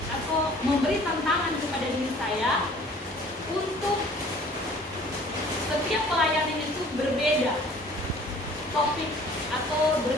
atau memberi tantangan kepada diri saya untuk setiap pelayanan itu berbeda topik atau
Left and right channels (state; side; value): normal; both; correlation 0.51